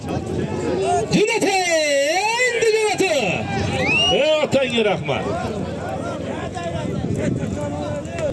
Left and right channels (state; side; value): identical; both; correlation 1.00